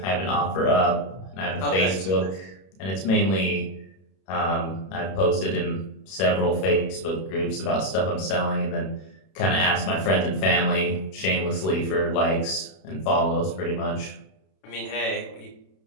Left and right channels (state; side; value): late; right; 32 ms